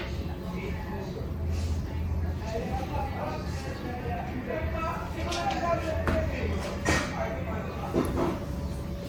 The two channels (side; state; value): both; identical; correlation 1.00